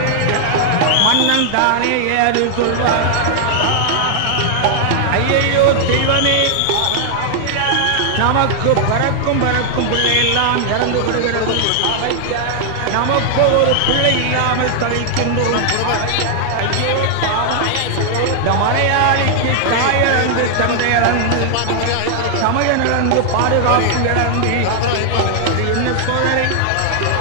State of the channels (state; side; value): different; both; correlation 0.00